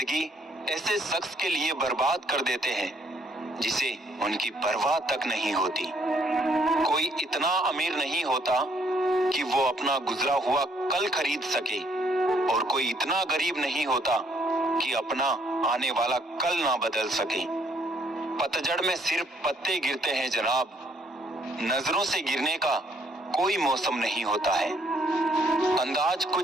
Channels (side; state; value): both; normal; correlation 0.67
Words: ऐसे शख्स के लिए बर्बाद कर देते हैं जिसे उनकी परवाह तक नहीं होती। कोई इतना अमीर नहीं होता कि वो अपना गुजरा हुआ कल खरीद सके, और कोई इतना गरीब नहीं होता कि अपना आने वाला कल ना बदल सके। पतझड़ में सिर्फ पत्ते गिरते हैं जनाब, नजरों से गिरने का कोई मौसम नहीं होता है। अंदाज